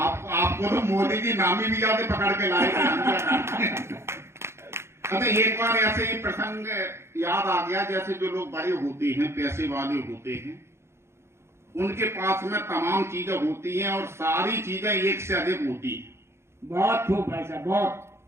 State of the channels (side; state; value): left; late; 0.13 ms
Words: तो मोदी जी नामी भी जाते पकड़ के लाए थे। अच्छा, एक बार ऐसे ही प्रसंग याद आ गया, जैसे जो लोग बड़े होते हैं, पैसे वाले होते हैं, उनके पास में तमाम चीजें होती हैं और सारी चीजें एक से अधिक होती हैं। बहुत खूब भाई साहब, बहुत